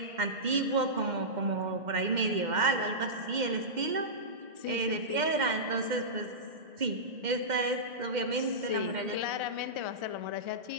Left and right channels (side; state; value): left; late; 2.1 ms